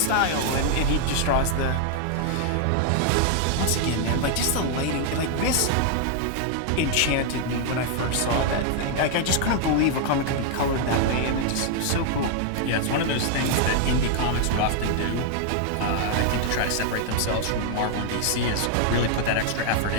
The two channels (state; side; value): different; both; correlation 0.00